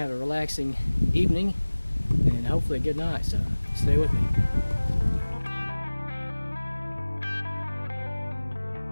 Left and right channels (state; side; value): inverted; both; correlation -1.00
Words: have a relaxing evening and hopefully a good night, so stay with me.